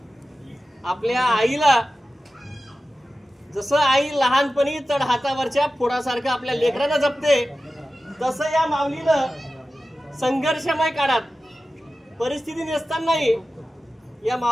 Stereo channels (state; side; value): normal; both; correlation 0.94